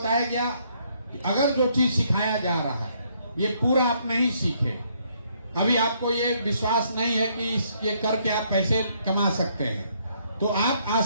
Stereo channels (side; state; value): both; inverted; correlation -0.70